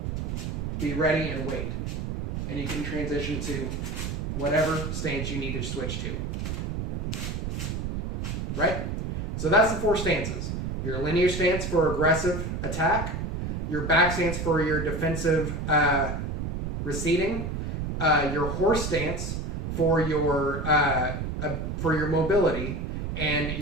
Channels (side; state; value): right; noise; rumble, 3 dB below the sound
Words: be ready and wait. And you can transition to whatever stance you need to switch to. Right? So that's the 4 stances. Your linear stance for aggressive attack, your back stance for your defensive receding, your horse stance for your mobility, and